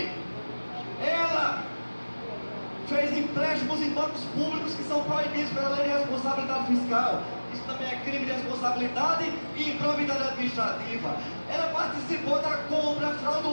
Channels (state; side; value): inverted; both; correlation -1.00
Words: Ela fez empréstimos em bancos públicos que são proibidos pela lei de responsabilidade fiscal. Isso também é crime de responsabilidade e improbidade administrativa. Ela participou da compra